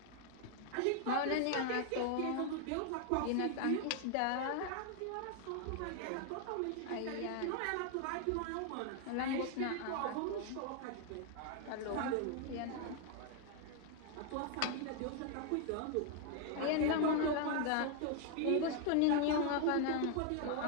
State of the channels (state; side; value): different; both; correlation 0.00